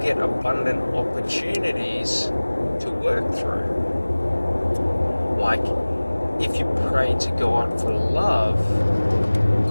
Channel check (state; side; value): inverted; both; correlation -1.00